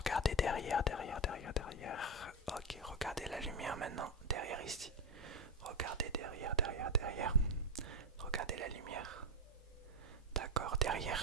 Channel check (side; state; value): both; normal; correlation 0.09